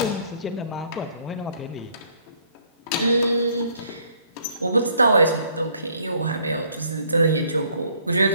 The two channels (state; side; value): inverted; both; correlation -0.63